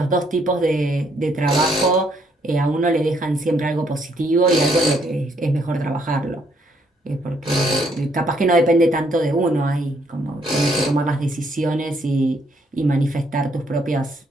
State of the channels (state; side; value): normal; both; correlation 0.70